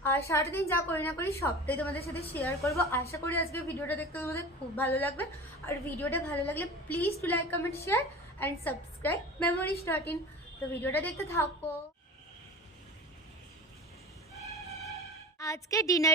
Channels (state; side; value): normal; both; correlation 0.36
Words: আর সারাদিন যা করি না করি সবটাই তোমাদের সাথে শেয়ার করব। আশা করি আজকে ভিডিওটা দেখতে তোমাদের খুব ভালো লাগবে। আর ভিডিওটা ভালো লাগলে please to like, comment, share and subscribe memories.in। তো ভিডিওটা দেখতে থাকো। আজকে